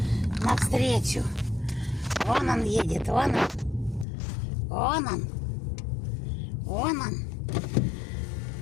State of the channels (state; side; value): drops out; right; at 4.0 s